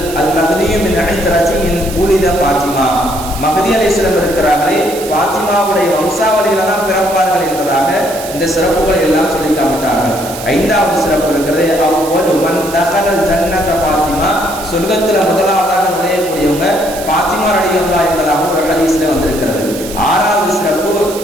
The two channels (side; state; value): right; noise; hiss, 12 dB below the sound